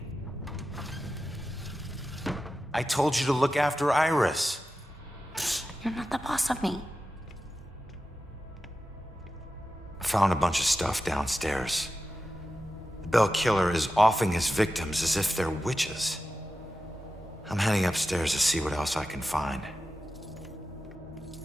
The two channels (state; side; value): normal; both; correlation 0.92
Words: I told you to look after Iris. You're not the boss of me. I found a bunch of stuff downstairs. The Bell Killer is offing his victims as if they're witches. I'm heading upstairs to see what else I can find.